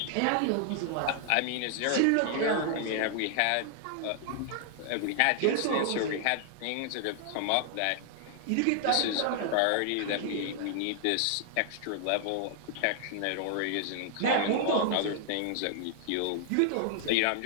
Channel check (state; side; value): different; both; correlation -0.01